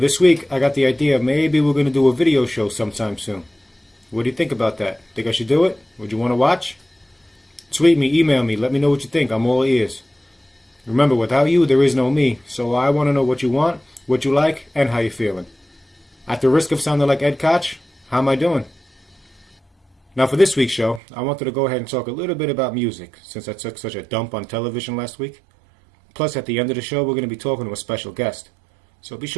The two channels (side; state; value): left; drops out; at 21.0 s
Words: week I got the idea maybe we're going to do a video show sometime soon. What do you think about that? Think I should do it? Would you want to watch? Tweet me, email me, let me know what you think. I'm all ears. Remember, without you there is no me, so I want to know what you want, what you like, and how you're feeling. At the risk of sounding like Ed Koch, how am I doing? Now for this week's show, I wanted to go ahead and talk a little bit about music, since I took such a dump on television last week. Plus, at the end of the show, we're going to be talking to a special guest. So be